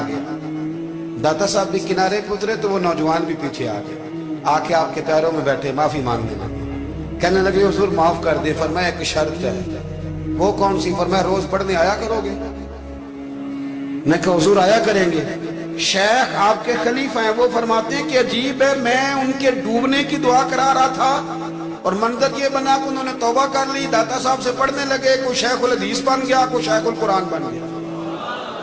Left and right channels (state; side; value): identical; both; correlation 1.00